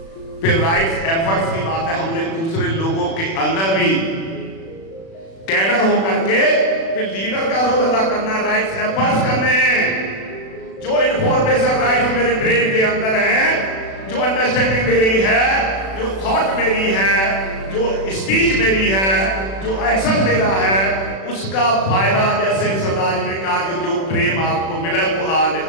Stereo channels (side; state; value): right; late; 36 ms